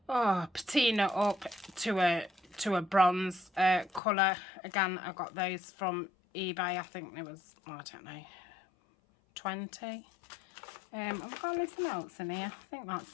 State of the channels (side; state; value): right; drops out; at 4.0 s